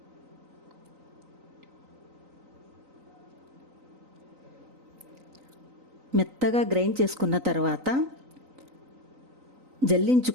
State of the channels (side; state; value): left; late; 3.9 ms